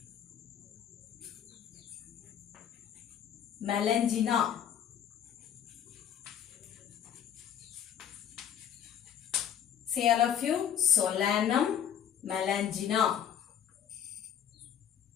Melangina, say all of you, Solanum, Melangina.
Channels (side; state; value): right; quieter; 9.2 dB